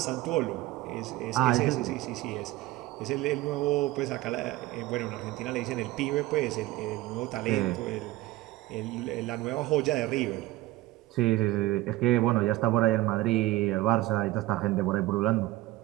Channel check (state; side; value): quieter; left; 17.3 dB